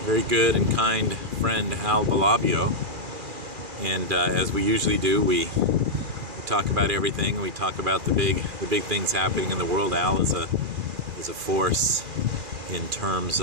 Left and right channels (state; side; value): late; left; 2.4 ms